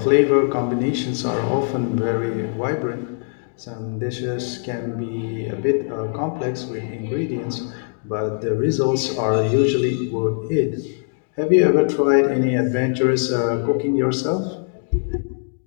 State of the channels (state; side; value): silent; right; digital silence